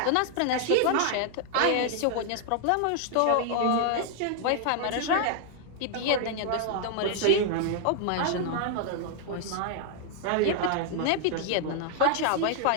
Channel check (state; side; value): different; both; correlation 0.00